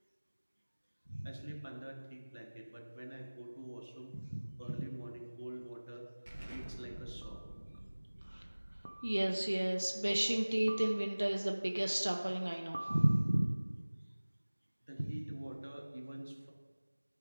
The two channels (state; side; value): inverted; both; correlation -1.00